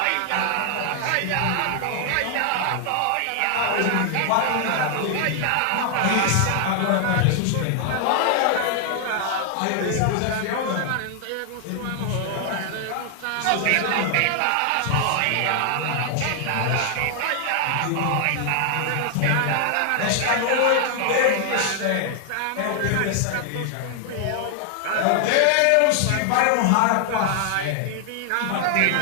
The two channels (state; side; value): different; both; correlation 0.00